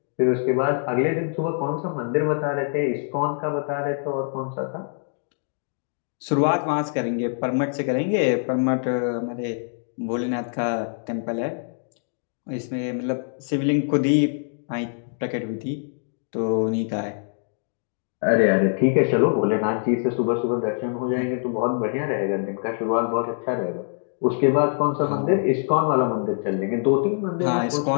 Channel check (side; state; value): right; silent; digital silence